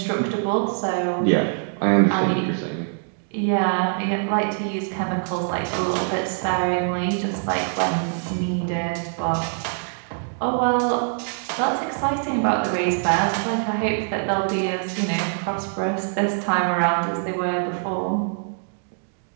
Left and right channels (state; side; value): silent; left; 63 dB below the other